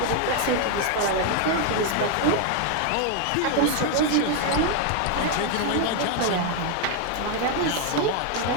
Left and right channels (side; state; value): both; different; correlation 0.01